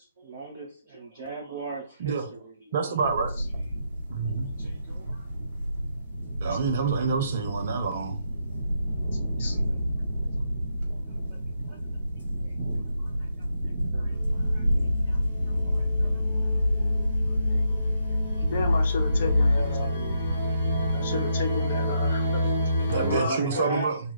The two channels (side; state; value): both; inverted; correlation -0.79